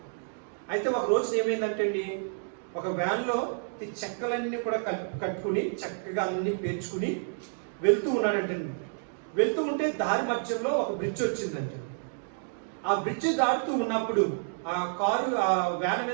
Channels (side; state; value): left; silent; digital silence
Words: అయితే ఒక రోజు ఏమైందంటే అండి, ఒక వ్యాన్లో ఈ చెక్కలన్నీ కూడా కట్టుకుని చక్కగా అన్ని పేర్చుకుని వెళ్తూ ఉన్నాడంటండి. వెళ్తూ ఉంటే దారి మధ్యలో ఒక బ్రిడ్జ్ వచ్చిందంట. ఆ బ్రిడ్జ్ దాటుతూ ఉన్నప్పుడు ఆ కారు ఆ వ్యాన్